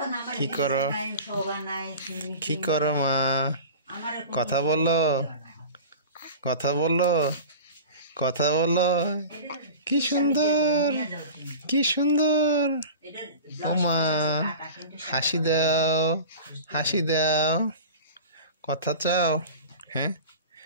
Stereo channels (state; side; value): inverted; both; correlation -0.36